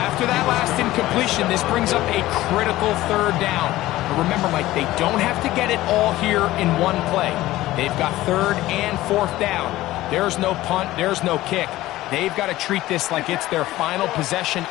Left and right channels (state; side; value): quieter; right; 16.4 dB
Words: after that last incompletion, this brings up a critical third down. But remember, Mike, they don't have to get it all here in one play. They've got third and fourth down. There's no punt, there's no kick. They've got to treat this like it's their final possession